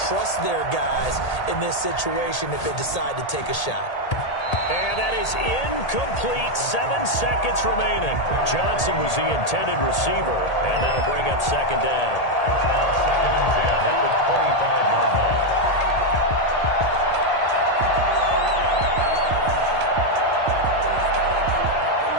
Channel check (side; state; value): right; late; 1.8 ms